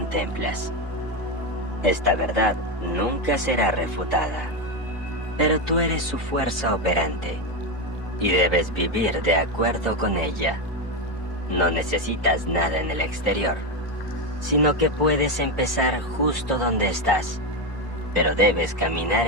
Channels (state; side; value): normal; both; correlation 0.11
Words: Esta verdad nunca será refutada, pero tú eres su fuerza operante y debes vivir de acuerdo con ella. No necesitas nada en el exterior, sino que puedes empezar justo donde estás, pero debes caminar